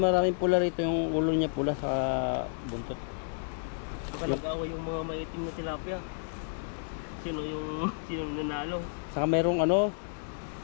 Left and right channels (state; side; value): silent; right; digital silence